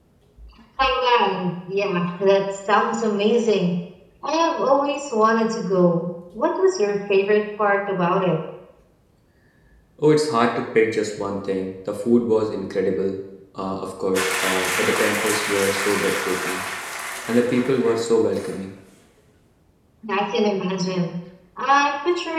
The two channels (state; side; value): identical; both; correlation 1.00